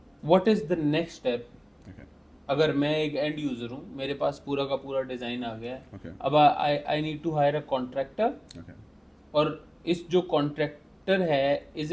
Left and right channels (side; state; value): both; identical; correlation 1.00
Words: what is the next step? अगर मैं एक एंड यूज़र हूँ, मेरे पास पूरा का पूरा डिज़ाइन आ गया है, अब I need to hire a contractor, और इस जो कॉन्ट्रैक्टर है, is